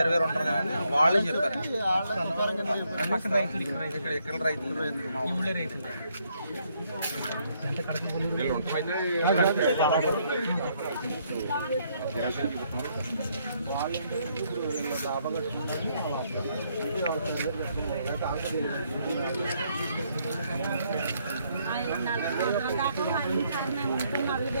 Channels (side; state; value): both; inverted; correlation -0.72